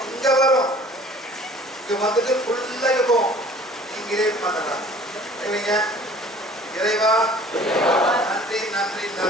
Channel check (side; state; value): both; normal; correlation 0.49